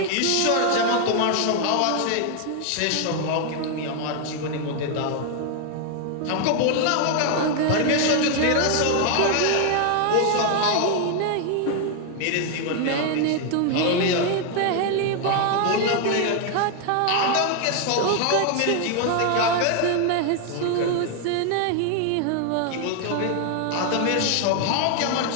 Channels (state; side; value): different; both; correlation 0.00